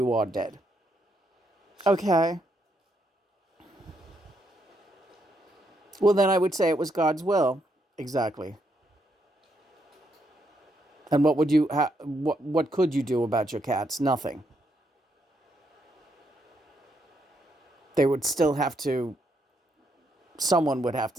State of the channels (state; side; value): normal; both; correlation 0.77